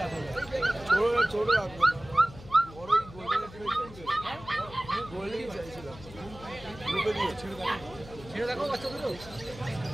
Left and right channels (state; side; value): noise; left; hum, 17 dB below the sound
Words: ছোট ছোট রাখবো বড় গোল্ডেন ছেড়ে দেখো বাচ্চা দুটো।